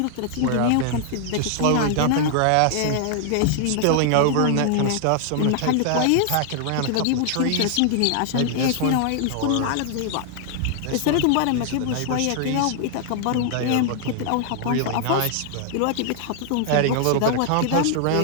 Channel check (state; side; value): different; both; correlation 0.00